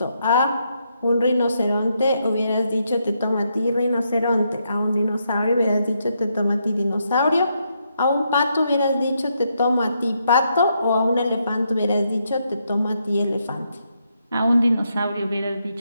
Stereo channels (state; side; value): inverted; both; correlation -0.79